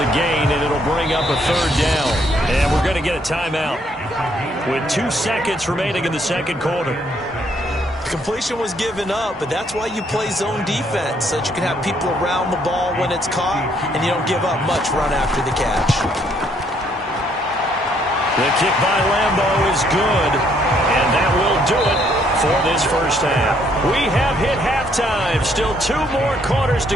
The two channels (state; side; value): normal; both; correlation 0.68